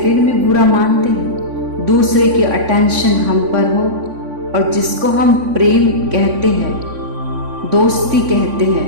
में बुरा मानते हैं। दूसरे की अटेंशन हम पर हो और जिसको हम प्रेम कहते हैं, दोस्ती कहते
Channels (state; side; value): late; left; 3.5 ms